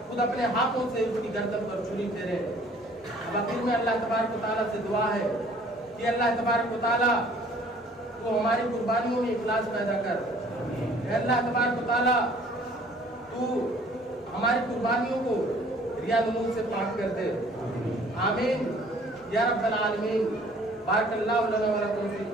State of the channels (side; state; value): both; normal; correlation 0.55